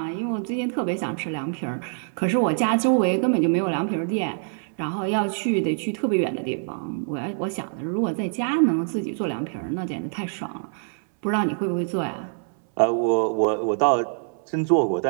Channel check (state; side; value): silent; left; 62 dB below the other